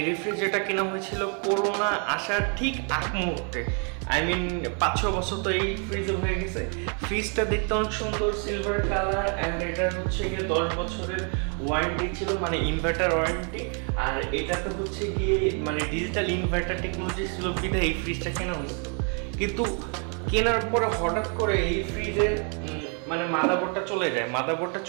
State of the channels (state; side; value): quieter; left; 39.8 dB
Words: রেফ্রিজারেটরটা কেনা হয়েছিল করোনা আসার ঠিক আগ মুহূর্তে। আই মিন 5-6 বছর তো এই ফ্রিজে হয়ে গেছে। ফ্রিজটা দেখতে অনেক সুন্দর, সিলভার কালার, অ্যান্ড এটা হচ্ছে গিয়ে 10 বছরের ওয়ারেন্টি ছিল, মানে ইনভার্টার ওয়ারেন্টি। আর এটাতে হচ্ছে গিয়ে মানে ডিজিটাল ইনভার্টার টেকনোলজি ছিল বিধায় এই ফ্রিজটা কেনা হয়েছিল। কিন্তু কেনার পরে হঠাৎ করে এই ফ্রিজের মানে মাদারবোর্ডটা চলে যায়। মাদারবোর্ডটা